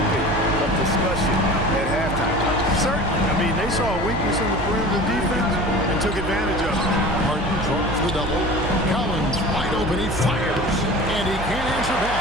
of discussion at halftime. Certainly. I mean, they saw a weakness in the perimeter defense and took advantage of it. Harden draws the double. Collins wide open. He fires. And he can't answer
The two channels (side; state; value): right; noise; hum, 8 dB below the sound